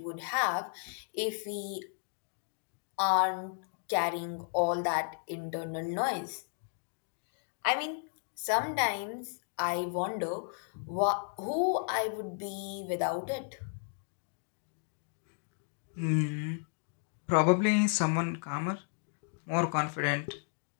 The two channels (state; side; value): silent; right; 55 dB below the other